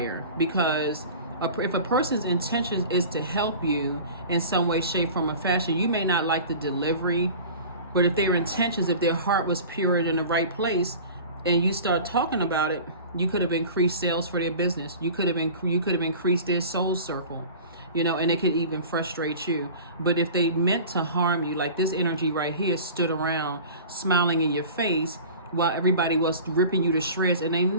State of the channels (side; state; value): both; inverted; correlation -0.39